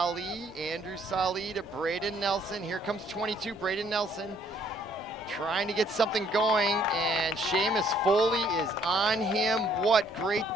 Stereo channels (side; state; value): both; normal; correlation 0.64